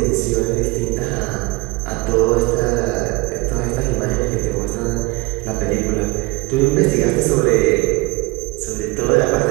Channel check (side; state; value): left; quieter; 24.3 dB